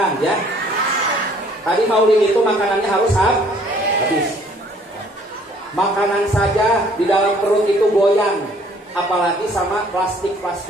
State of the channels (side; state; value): both; normal; correlation 0.59